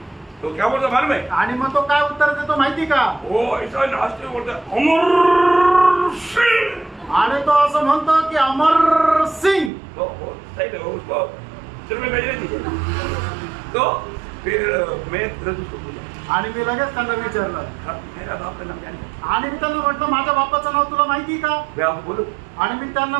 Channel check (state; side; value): drops out; left; at 9.7 s